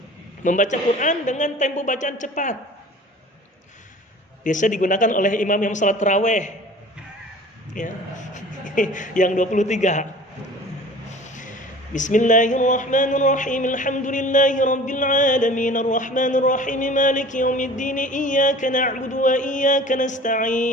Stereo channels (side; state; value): both; normal; correlation 0.44